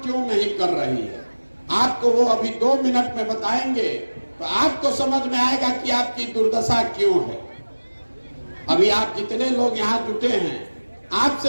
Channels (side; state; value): both; inverted; correlation -1.00